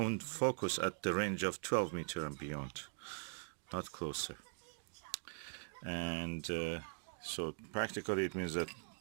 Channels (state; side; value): silent; left; digital silence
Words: focus at the range of 12 meter and beyond, not closer. And so practically it means that